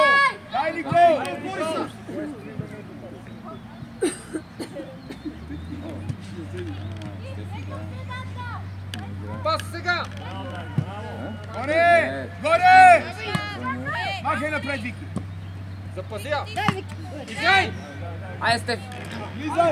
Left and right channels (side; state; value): both; identical; correlation 1.00